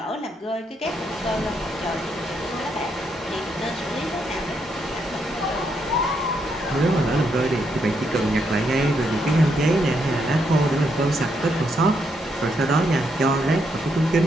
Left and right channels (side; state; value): both; normal; correlation 0.77